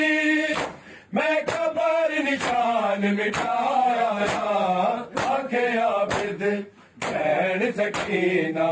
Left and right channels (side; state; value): both; identical; correlation 1.00